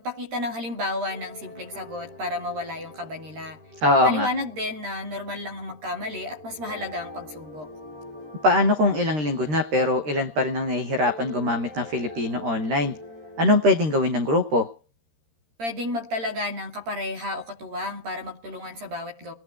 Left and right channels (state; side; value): late; left; 13 ms